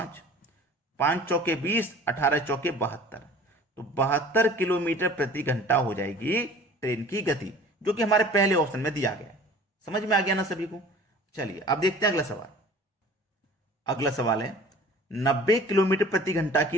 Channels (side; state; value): both; normal; correlation 0.46